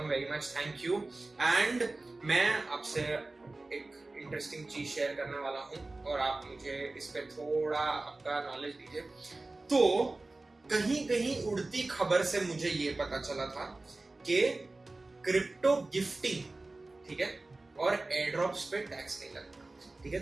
very much thank you. And मैं आपसे एक इंटरेस्टिंग चीज शेयर करने वाला हूँ और आप मुझे इस पे थोड़ा आपका नॉलेज दीजिए। तो कहीं कहीं उड़ती खबर से मुझे ये पता चला था कि क्रिप्टो गिफ्टिंग, ठीक है, और एयर ड्रॉप्स पे टैक्स नहीं लगता। ठीक है,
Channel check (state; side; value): quieter; left; 3.1 dB